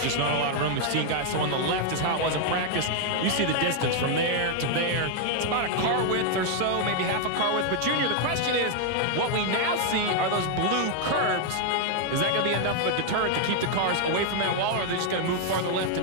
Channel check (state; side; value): different; both; correlation 0.00